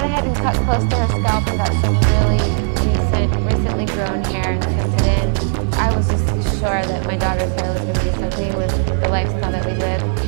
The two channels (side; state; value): left; silent; 61 dB below the other